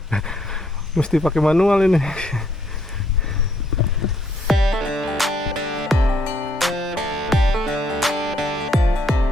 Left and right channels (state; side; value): normal; both; correlation 0.70